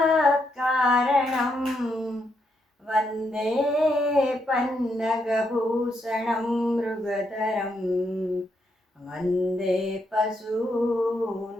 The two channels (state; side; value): normal; both; correlation 0.79